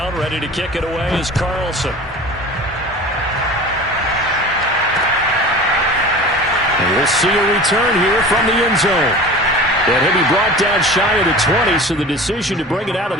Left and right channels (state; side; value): normal; both; correlation 0.37